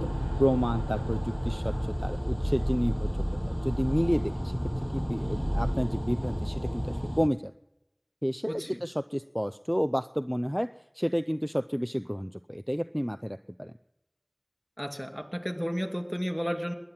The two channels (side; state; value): both; identical; correlation 1.00